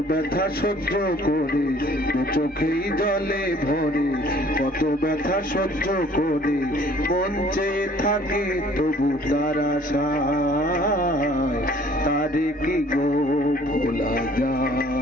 ব্যথা সহ্য করে, দু চোখেই জলে ভরে কত ব্যথা সহ্য করে মন চেয়ে থাকে তবু তার আশায় তারে কি গো ভোলা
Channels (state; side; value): normal; both; correlation 0.55